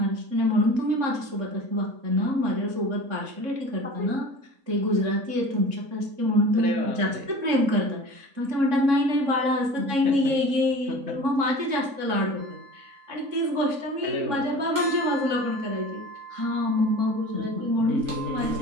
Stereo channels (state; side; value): late; left; 3.6 ms